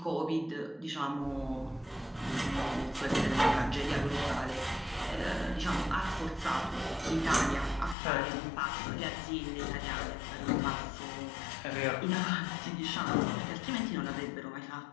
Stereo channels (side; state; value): right; drops out; at 8.0 s